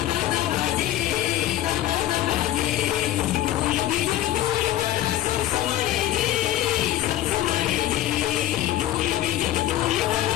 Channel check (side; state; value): right; quieter; 13.8 dB